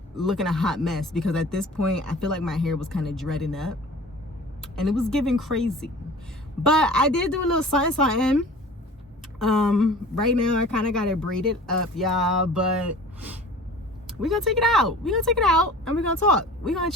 looking a hot mess, because at this point, I feel like my hair was kind of dreading up. And it was giving crazy. But I did do a little something. Right now, I kind of got it braided up, y'all. But we're going to take it out. We're going to take it out and we're going to talk. We're going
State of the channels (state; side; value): normal; both; correlation 0.42